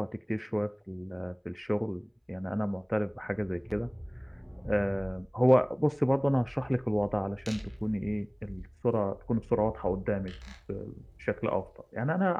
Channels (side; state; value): both; identical; correlation 1.00